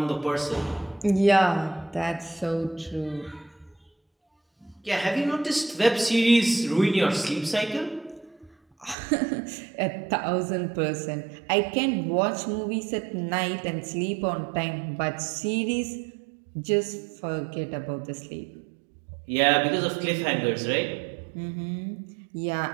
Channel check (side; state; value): left; drops out; at 9.0 s